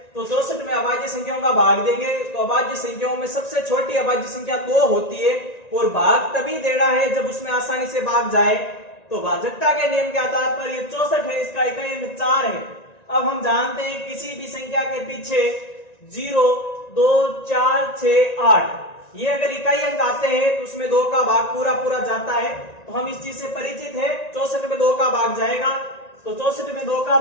तो 64 में अभाज्य संख्याओं का भाग देंगे, तो अभाज्य संख्याओं में सबसे छोटी अभाज्य संख्या 2 होती है, और भाग तभी देना है जब उसमें आसानी से भाग जाए। तो भाजकता के नियम के आधार पर ये 64 है, इसका इकाई अंक 4 है। अब हम जानते हैं किसी भी संख्या के पीछे 0, 2, 4, 6, 8 ये अगर इकाई अंक आते हैं तो उसमें 2 का भाग पूरा पूरा जाता है। तो हम इस चीज से परिचित है। 64 में 2 का भाग जाएगा, तो 64 में 2 का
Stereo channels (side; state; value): right; late; 1.9 ms